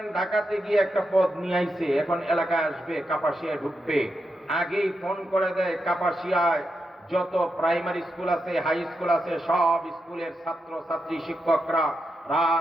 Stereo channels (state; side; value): normal; both; correlation 0.86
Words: ঢাকাতে গিয়ে একটা পদ নিয়ে আইছে, এখন এলাকায় আসবে, কাপাসিয়ায় ঢুকবে, আগেই ফোন করে দেয় কাপাসিয়ায় যত প্রাইমারি স্কুল আছে, হাই স্কুল আছে, সব স্কুলের ছাত্র ছাত্রী শিক্ষকরা